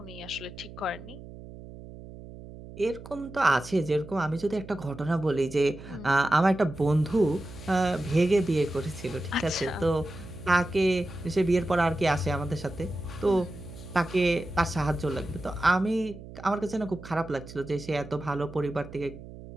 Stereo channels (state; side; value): noise; right; hum, 15 dB below the sound